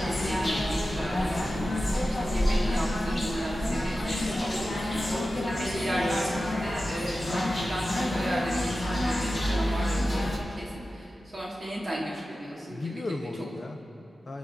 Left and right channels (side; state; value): both; normal; correlation 0.94